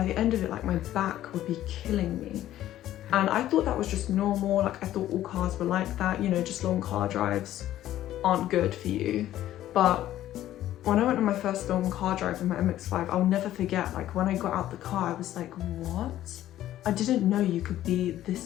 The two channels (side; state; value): right; quieter; 13.2 dB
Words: the end of it, like my back would be killing me. And I thought that was just normal. Like I thought all cars were like that, you know, just long car drives aren't good for you. But when I went on my first long car drive in my MX5, I'll never forget, like when I got out the car, I was like, what? I didn't know you could be this